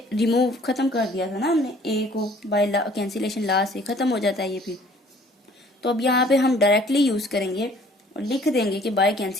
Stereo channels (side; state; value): both; normal; correlation 0.56